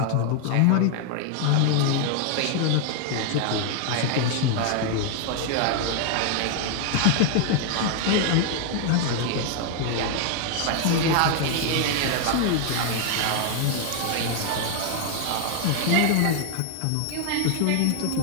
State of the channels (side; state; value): both; different; correlation 0.00